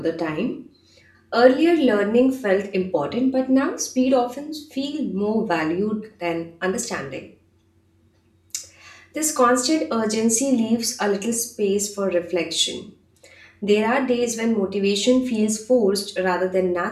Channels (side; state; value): both; identical; correlation 1.00